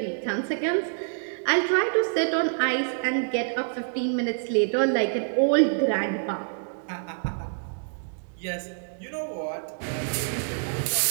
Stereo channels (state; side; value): silent; left; digital silence